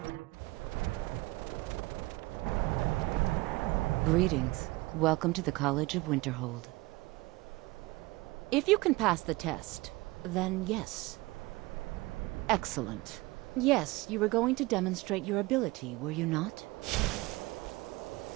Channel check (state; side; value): quieter; left; 21.7 dB